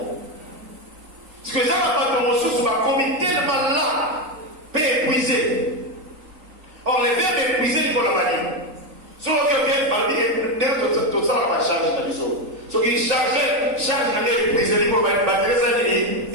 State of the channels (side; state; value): left; late; 3.8 ms